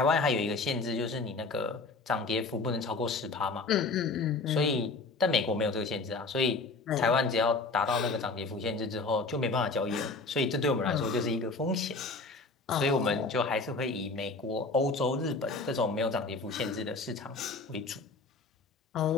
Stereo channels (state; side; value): quieter; right; 3.7 dB